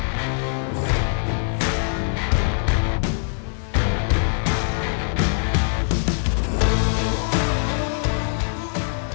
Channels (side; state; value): right; silent; 64 dB below the other